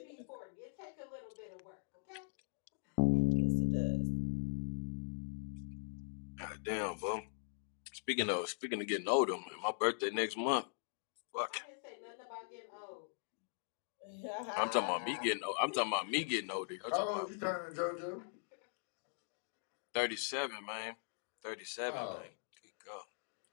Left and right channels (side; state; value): right; silent; digital silence